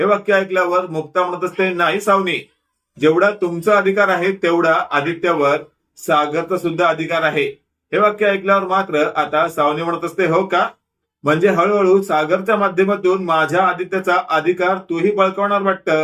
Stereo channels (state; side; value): identical; both; correlation 1.00